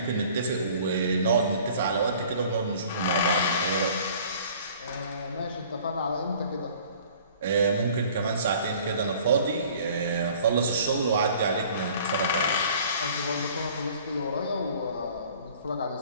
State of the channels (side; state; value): both; inverted; correlation -0.51